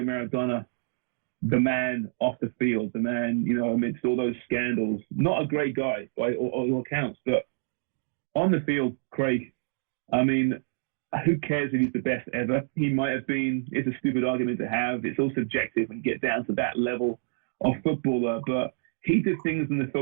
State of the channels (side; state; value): left; silent; digital silence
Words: Maradona, the man off the field, the man, you know, amidst all those scandals. Not a great guy by all accounts, but on the field, Craig, I mean, who cares if he's the best ever? He might have been. It's a stupid argument to have. It's all subjective when you get down to that level of footballer, but he did things in the